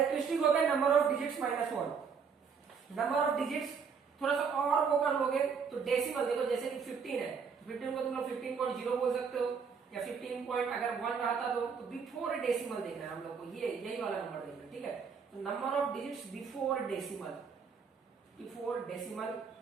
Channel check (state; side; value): quieter; left; 6.1 dB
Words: हो गया number of digits -1। Number of digits थोड़ा सा और वो कर लोगे तो डेसिमल, देखो जैसे कि 15 है, 15 को तुम लोग 15.0 बोल सकते हो, या 15 पॉइंट अगर 1 रहता तो बिफोर डेसिमल देखना है हम लोग को, ये यही वाला नंबर देखना है, ठीक है। तो number of digits before decimal